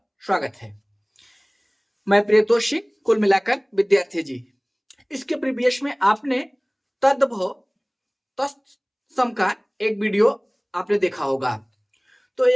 स्वागत है। मैं प्रियतोषी, कुल मिलाकर विद्यार्थी जी। इसके प्रीवियस में आपने तद्भव तत्सम का एक वीडियो आपने देखा होगा। तो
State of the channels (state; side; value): identical; both; correlation 1.00